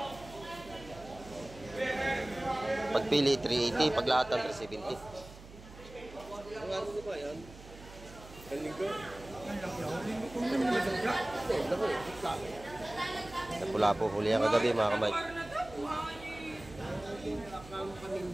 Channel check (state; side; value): noise; right; hum, 17 dB below the sound